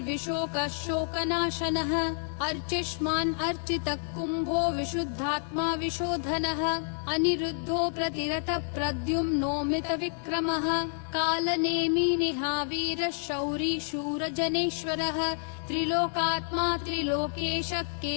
शोकनाशनः अर्चिष्मान् अर्चितः कुम्भो विशुद्धात्मा विशोधनः अनिरुद्धो प्रतिरतः प्रद्युम्नोमित विक्रमः कालनेमि निहावीरः शौरी शूरजनेश्वरः त्रिलोकात्मा त्रिलोकेशः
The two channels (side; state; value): right; silent; 58 dB below the other